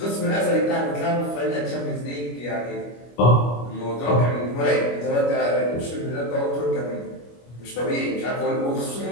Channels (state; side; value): late; right; 25 ms